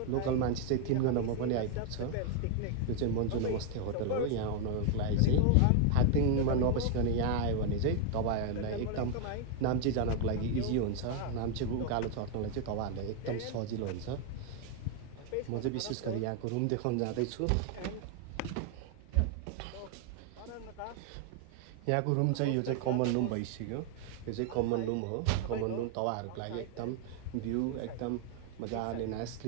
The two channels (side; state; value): both; different; correlation 0.01